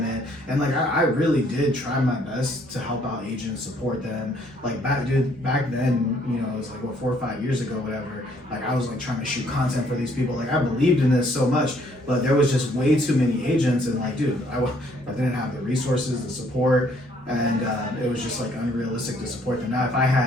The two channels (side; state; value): both; normal; correlation 0.65